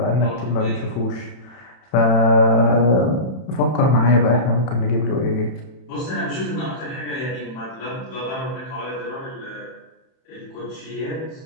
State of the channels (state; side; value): late; right; 31 ms